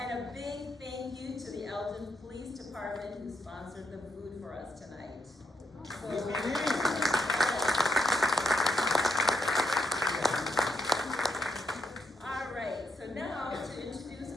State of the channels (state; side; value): normal; both; correlation 0.80